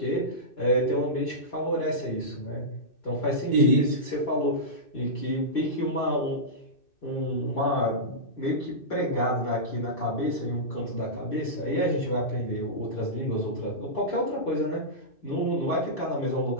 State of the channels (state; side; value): late; right; 2.6 ms